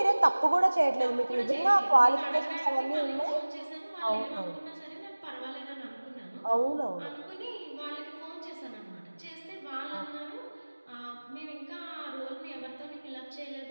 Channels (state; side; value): inverted; both; correlation -1.00